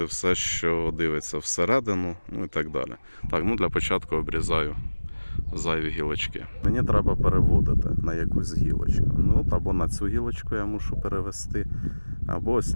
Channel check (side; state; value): both; inverted; correlation -1.00